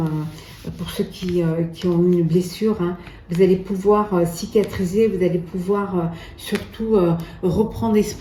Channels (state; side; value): identical; both; correlation 1.00